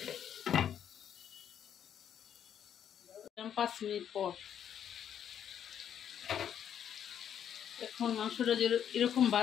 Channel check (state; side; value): quieter; right; 9.2 dB